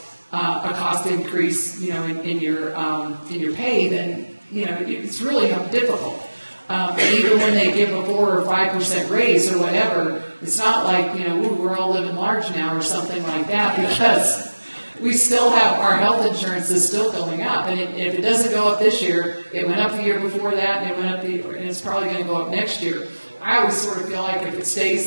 increase, in your pay, then it's really difficult. Even when they give a 4 or 5% raise or whatever, it's not like we're all living large now or something like that, because we still have our health insurance is still going up, and if it doesn't go up this year, it went up the year before that, and it went up and it's probably going to go up next year. I always sort of feel like if it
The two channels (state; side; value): inverted; both; correlation -1.00